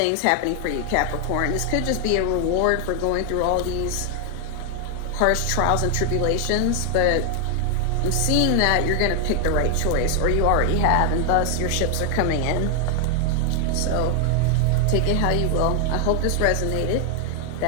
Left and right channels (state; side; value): different; both; correlation 0.00